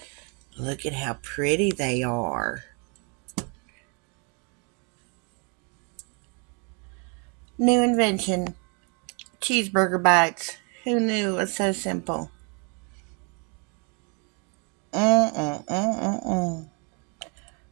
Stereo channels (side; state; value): left; quieter; 34.9 dB